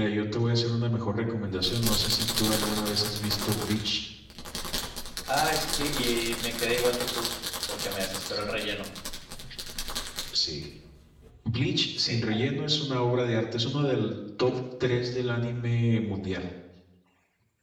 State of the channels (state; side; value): identical; both; correlation 1.00